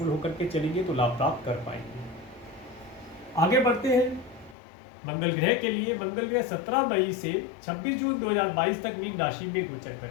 होकर के चलेंगे तो लाभ प्राप्त कर पाएंगे। आगे बढ़ते हैं मंगल ग्रह के लिए। मंगल ग्रह 17 मई से 26 जून 2022 तक मीन राशि में गोचर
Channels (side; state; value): right; drops out; at 4.5 s